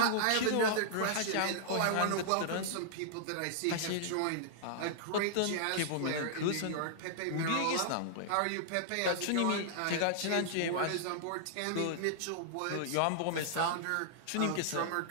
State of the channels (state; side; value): different; both; correlation -0.01